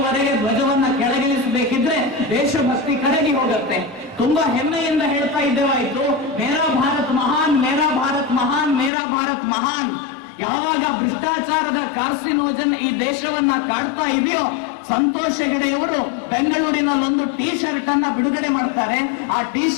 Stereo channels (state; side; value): drops out; right; at 8.9 s